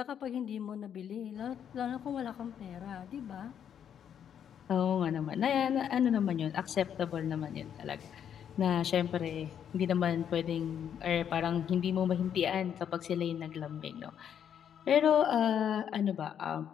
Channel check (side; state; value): right; quieter; 8.8 dB